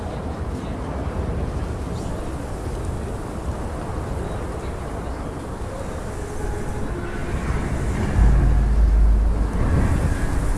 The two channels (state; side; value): identical; both; correlation 1.00